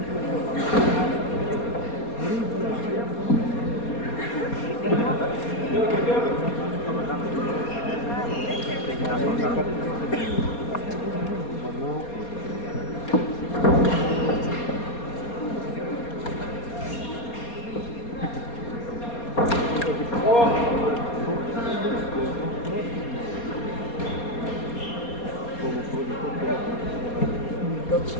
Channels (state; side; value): late; right; 4.2 ms